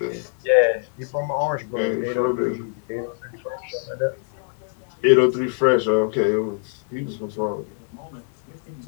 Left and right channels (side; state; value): right; silent; digital silence